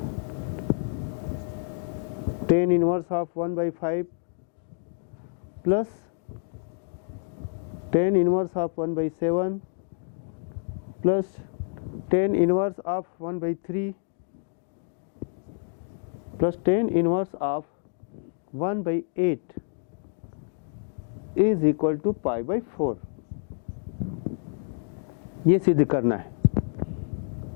tan inverse of 1/5 plus tan inverse of 1/7 plus tan inverse of 1/3 plus tan inverse of 1/8 is equal to π/4। ये सिद्ध करना है।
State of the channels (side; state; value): right; silent; digital silence